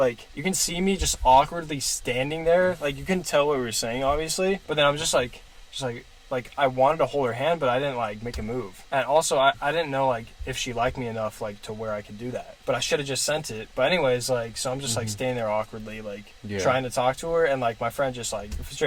you can see me just awkwardly standing there. You can tell what we were saying, obviously, but then I'm just I wanted to hold her hand, but I didn't make a move. And also, I didn't know if she liked me enough to where I could do that. But I should have just sent it. But anyways, so I'm just standing there awkwardly, trying to talk to her, and my friend just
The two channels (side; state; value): both; identical; correlation 1.00